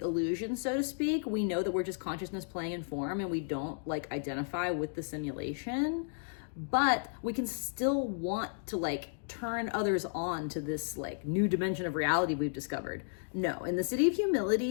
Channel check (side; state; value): right; silent; digital silence